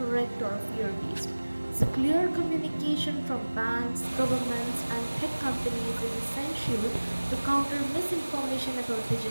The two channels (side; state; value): both; inverted; correlation -1.00